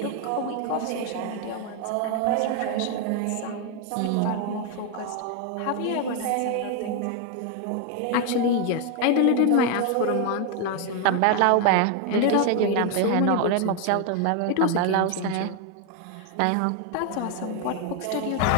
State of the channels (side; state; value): both; different; correlation 0.01